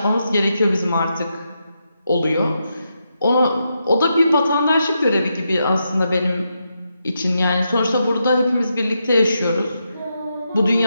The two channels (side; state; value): both; inverted; correlation -0.84